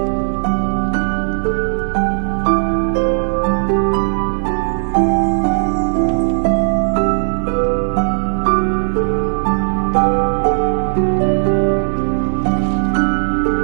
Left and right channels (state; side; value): silent; left; digital silence